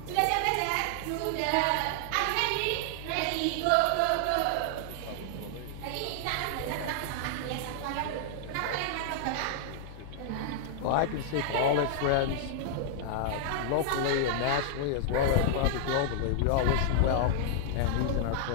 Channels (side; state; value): both; different; correlation -0.01